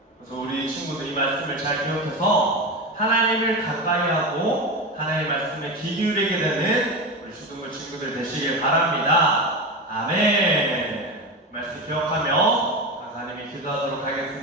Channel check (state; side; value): normal; both; correlation 0.21